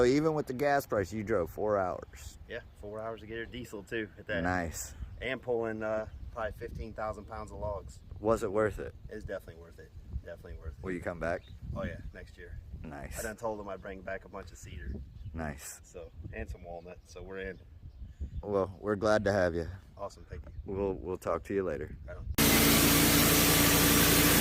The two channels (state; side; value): identical; both; correlation 1.00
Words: even with the gas price, you drove 4 hours. Yeah, 4 hours to get here, diesel too at that. Nice. And pulling probably 15,000 pounds of logs. Was it worth it? It's definitely worth it. Definitely worth it. Will you come back? Oh yeah, next year. Nice. I done told them I'd bring back a bunch of cedar. Nice. So, and some walnut. So we're in. Well, we're glad to have you. Awesome, thank you. We'll talk to you later. Right on.